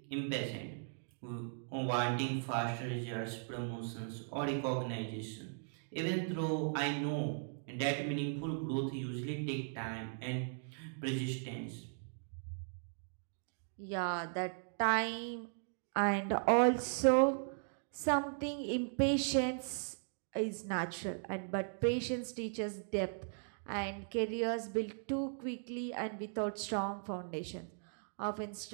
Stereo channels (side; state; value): left; silent; digital silence